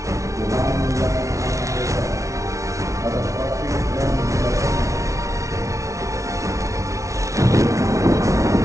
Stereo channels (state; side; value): late; left; 0.15 ms